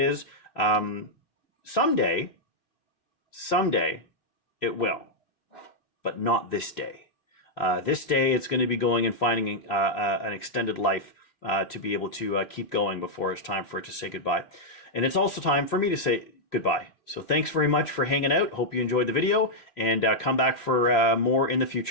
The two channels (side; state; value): right; late; 3.2 ms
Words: Someday it will. But not this day. This day, it's going to be going and finding an extended life to be able to keep going before it's time for it to say goodbye. And it's also time for me to say goodbye. So thanks very much for hanging out. Hope you enjoyed the video, and come back for more in the